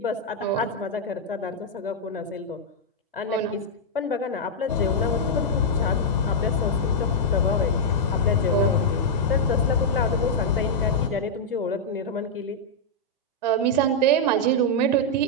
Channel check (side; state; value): both; normal; correlation -0.05